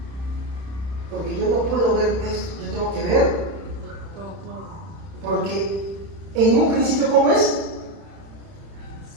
Porque yo no puedo ver esto, yo tengo que ver. Porque en un principio, ¿cómo es?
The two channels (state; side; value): late; left; 31 ms